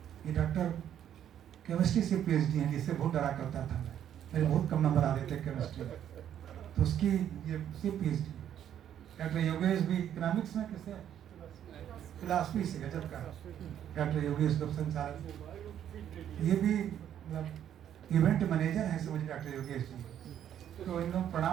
ये डॉक्टर केमिस्ट्री से पीएचडी हैं, जिससे बहुत डरा करता था मैं, मेरे बहुत कम नंबर आ रहे थे केमिस्ट्री में, तो उसकी ये पीएचडी। डॉक्टर योगेश भी इकोनॉमिक्स में, किसे फिलॉसफी से गजब का डॉक्टर योगेश गुप्त संचालक, ये भी मतलब इवेंट मैनेजर हैं, समझ डॉक्टर योगेश जी। तो इन लोग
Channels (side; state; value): left; quieter; 10.1 dB